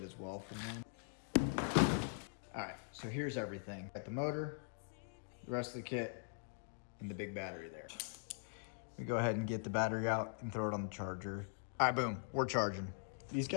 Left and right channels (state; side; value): silent; right; digital silence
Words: as well from them. All right, so here's everything. Got the motor, the rest of the kit, and the big battery there. We go ahead and get the battery out and throw it on the charger. All right, boom, we're charging. These